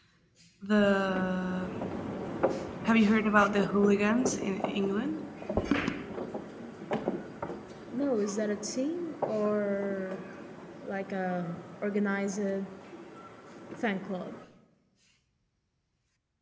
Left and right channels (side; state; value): both; identical; correlation 1.00